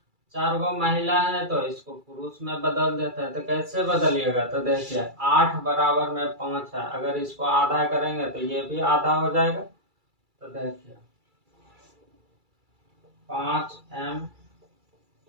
4 गो महिला है तो इसको पुरुष में बदल देते हैं। तो कैसे बदलिएगा, तो देखिए 8 बराबर में 5 है, अगर इसको आधा करेंगे तो ये भी आधा हो जाएगा। तो देखिए 5m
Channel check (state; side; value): late; left; 2.3 ms